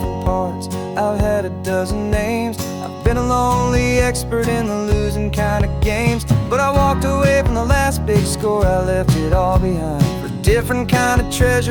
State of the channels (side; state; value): both; identical; correlation 1.00